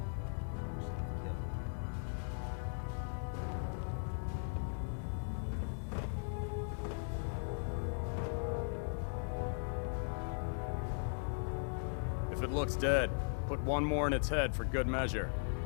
a good way to get yourself killed. If it looks dead, put one more in its head for good measure.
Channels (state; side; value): silent; right; digital silence